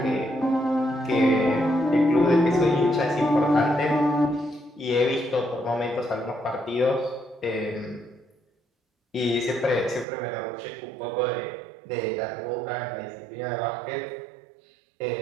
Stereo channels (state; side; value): drops out; left; at 10.1 s